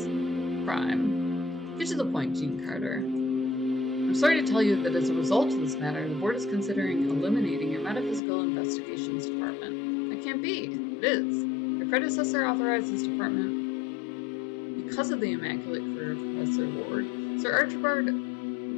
crime. Get to the point, Dean Carter. I'm sorry to tell you that as a result of this matter, the board is considering eliminating your Metaphysical Investigations Department. That can't be. It is. Your predecessor authorized this department because of the immaculate career of Professor Ward. Sir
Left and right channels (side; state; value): right; drops out; at 8.2 s